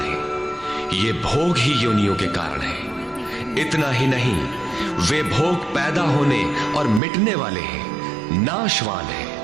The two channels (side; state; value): left; drops out; at 7.0 s